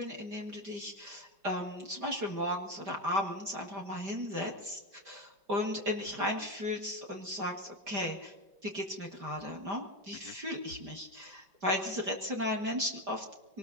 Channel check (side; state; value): left; late; 5.0 ms